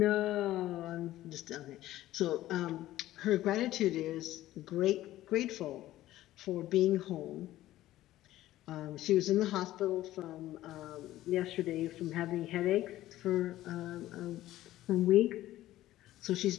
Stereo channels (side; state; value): right; quieter; 14.9 dB